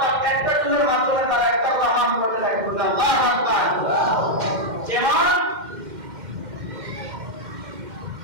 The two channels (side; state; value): left; late; 2.1 ms